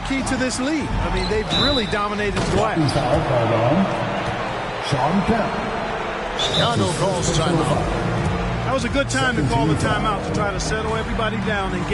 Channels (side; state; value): both; identical; correlation 1.00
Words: to this lead. I mean, they've really dominated the glass. Foul called on Shawn Kemp. Chicago calls timeout. That was a good time to call the timeout to try to settle everybody down and